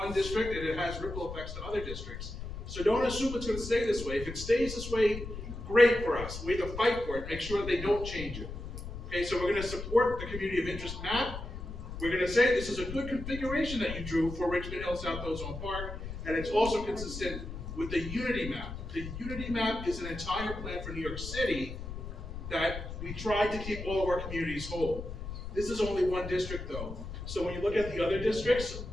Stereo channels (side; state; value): left; noise; rumble, 8 dB below the sound